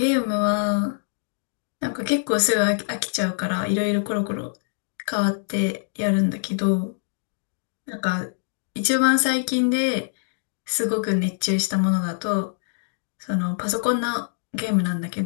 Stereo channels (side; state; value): right; silent; digital silence